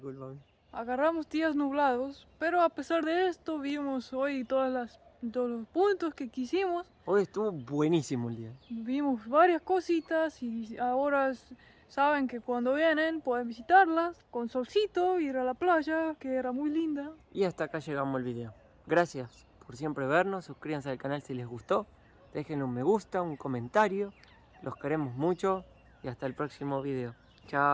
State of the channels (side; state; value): both; identical; correlation 1.00